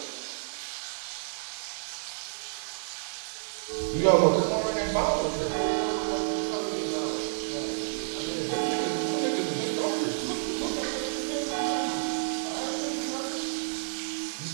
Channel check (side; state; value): left; silent; digital silence